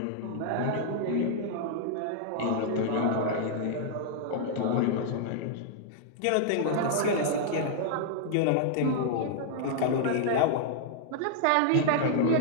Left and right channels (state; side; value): different; both; correlation -0.01